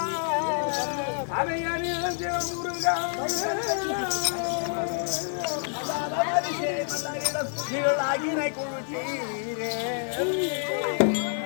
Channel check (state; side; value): silent; right; digital silence